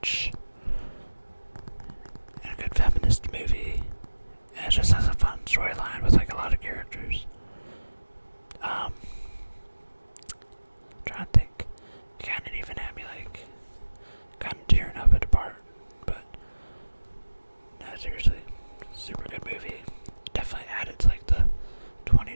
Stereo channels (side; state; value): both; inverted; correlation -1.00